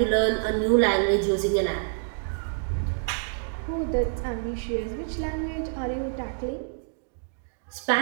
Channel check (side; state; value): left; silent; digital silence